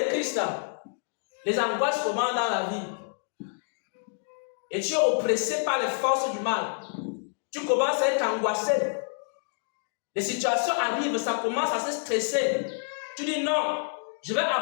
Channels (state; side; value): silent; right; digital silence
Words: Christ. Les angoisses commencent dans la vie. Et tu es oppressé par les forces du mal. Tu commences à être angoissé. Les situations arrivent, ça commence à se stresser. Tu dis non, je vais